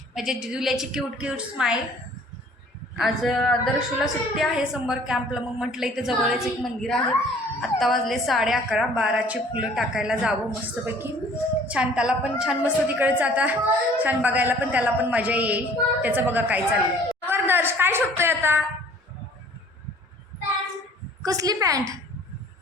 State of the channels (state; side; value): normal; both; correlation 0.53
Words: म्हणजे दिदुल्याची क्यूट क्यूट स्माईल. आज दर्शूला सुट्टी आहे समर कॅम्पला. मग म्हटलं इथे जवळच एक मंदिर आहे. आत्ता वाजले 11:30. 12ची फुलं टाकायला जावं मस्तपैकी. छान त्याला पण छान मस्त तिकडचं आता छान बघायला पण त्याला पण मजा येईल. त्याचं बघा काय चाललंय. दर्श काय शोधतोय आता? कसली पॅन्ट?